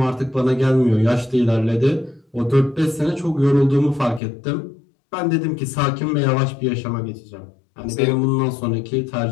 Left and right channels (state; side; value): drops out; right; at 4.2 s